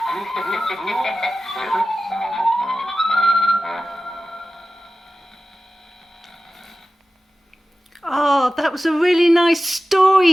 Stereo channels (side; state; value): both; normal; correlation 0.95